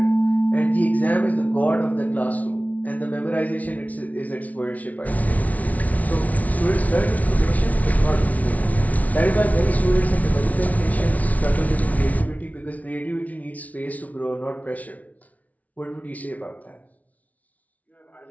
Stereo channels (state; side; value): late; right; 0.071 ms